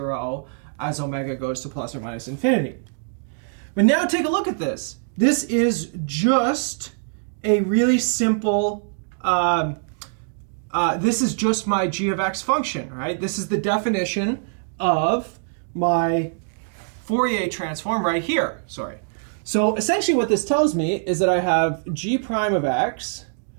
as omega goes to plus or minus infinity. But now take a look at this. This is just a really simple, this is just my g of x function, right? This is the definition of my Fourier transform right here, sorry. So essentially what this tells me is that I have g prime of x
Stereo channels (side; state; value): left; silent; digital silence